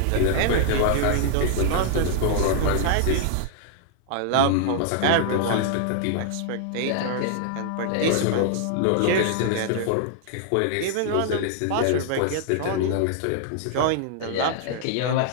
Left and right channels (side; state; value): both; different; correlation -0.01